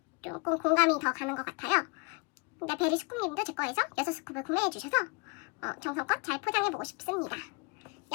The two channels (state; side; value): quieter; right; 31.3 dB